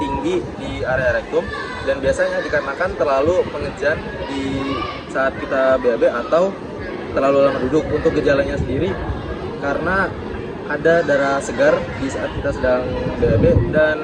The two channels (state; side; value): identical; both; correlation 1.00